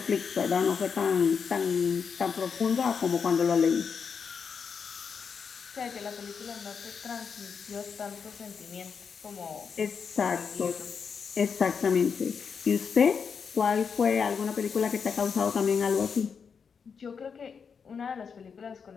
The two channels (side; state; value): right; quieter; 6.2 dB